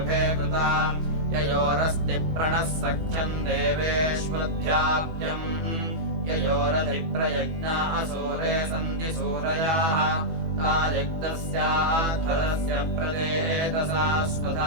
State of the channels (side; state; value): left; late; 18 ms